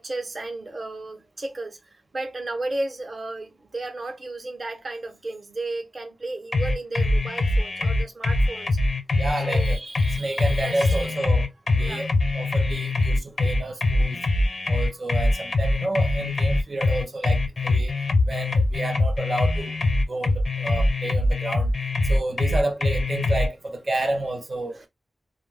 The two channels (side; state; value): both; normal; correlation 0.92